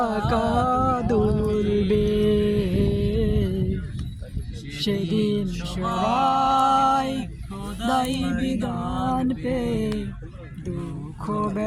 দুলবে, সেদিন সবাই খোদাই বিধান পে দুঃখ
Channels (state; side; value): identical; both; correlation 1.00